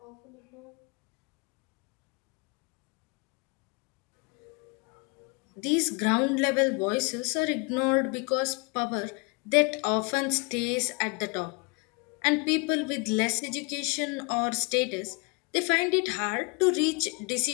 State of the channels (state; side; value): quieter; right; 30.7 dB